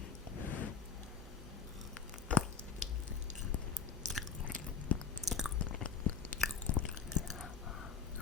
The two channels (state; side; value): quieter; right; 6.3 dB